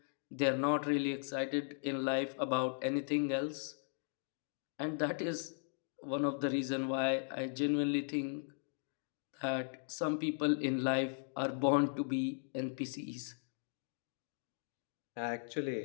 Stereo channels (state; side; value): silent; right; digital silence